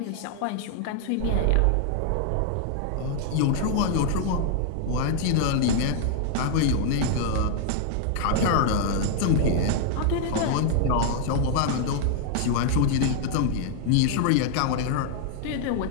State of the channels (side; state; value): both; different; correlation -0.01